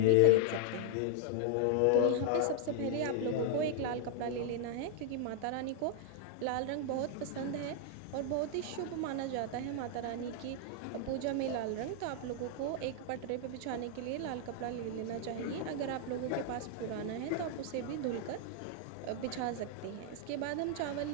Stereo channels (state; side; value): different; both; correlation -0.01